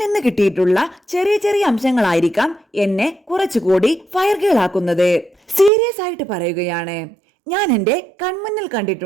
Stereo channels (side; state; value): left; drops out; at 5.7 s